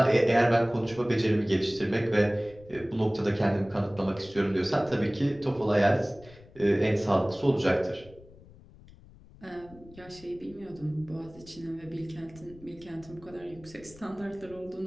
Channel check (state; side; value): noise; left; rumble, 22 dB below the sound